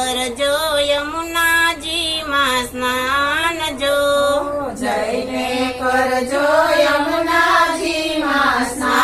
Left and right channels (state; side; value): identical; both; correlation 1.00